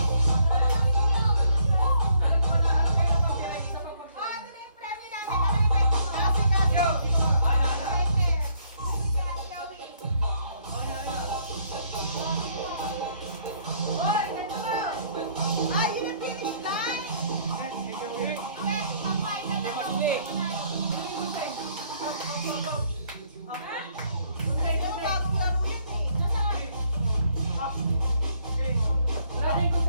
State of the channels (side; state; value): both; inverted; correlation -0.66